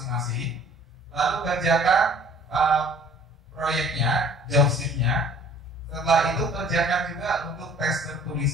lalu kerjakan proyeknya, job sheet-nya. Setelah itu kerjakan juga untuk tes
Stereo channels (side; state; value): both; normal; correlation 0.52